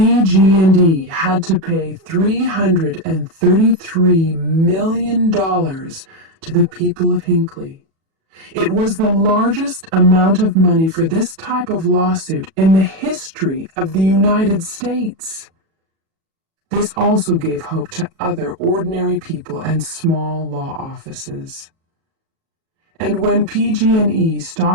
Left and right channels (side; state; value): left; late; 37 ms